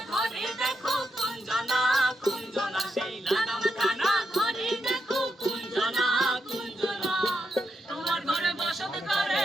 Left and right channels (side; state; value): both; normal; correlation 0.83